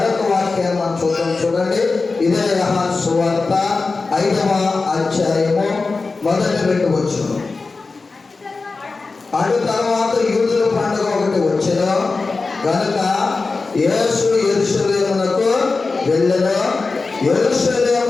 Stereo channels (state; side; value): quieter; right; 4.0 dB